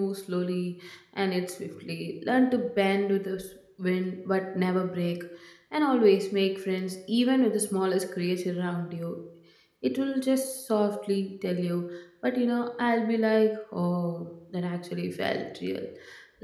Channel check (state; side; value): identical; both; correlation 1.00